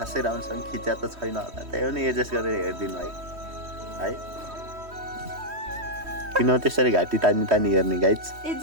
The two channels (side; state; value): left; late; 3.1 ms